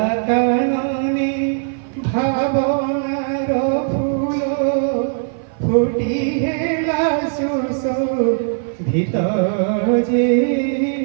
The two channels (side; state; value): left; silent; 55 dB below the other